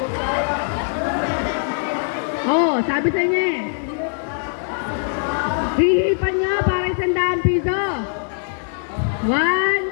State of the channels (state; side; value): silent; right; digital silence